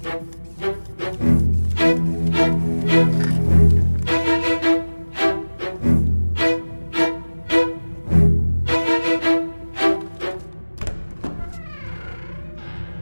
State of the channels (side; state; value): both; inverted; correlation -1.00